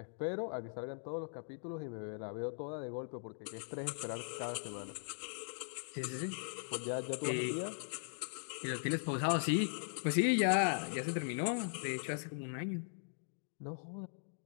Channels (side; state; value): right; silent; digital silence